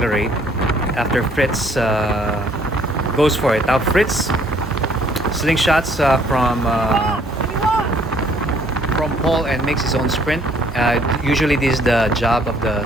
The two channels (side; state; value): both; normal; correlation 0.62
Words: after Fritz goes for it. Now Fritz slingshots from Paul and makes his own sprint. Usually this is the job of the